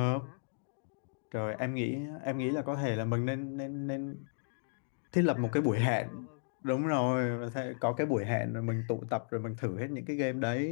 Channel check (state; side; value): silent; right; digital silence